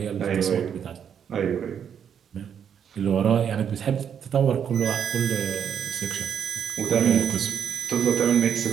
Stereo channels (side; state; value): left; quieter; 8.1 dB